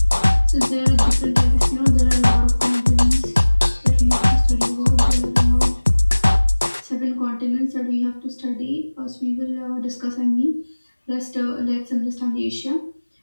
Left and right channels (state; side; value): inverted; both; correlation -1.00